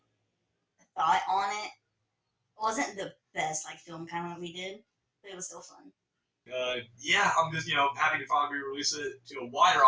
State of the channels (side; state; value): both; identical; correlation 1.00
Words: thought on it wasn't the best film kind of what we did, but it was still fun. I'm just happy to finally release it to a wider